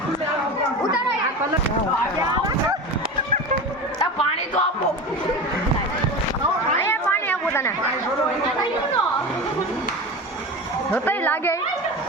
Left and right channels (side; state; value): both; normal; correlation 0.28